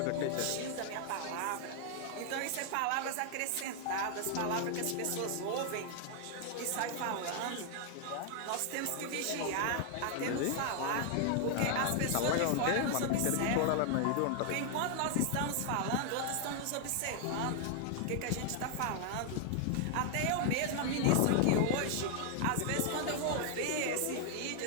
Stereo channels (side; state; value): both; different; correlation 0.00